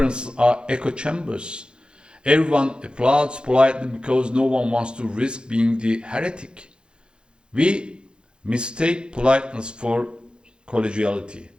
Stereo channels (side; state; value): left; late; 0.050 ms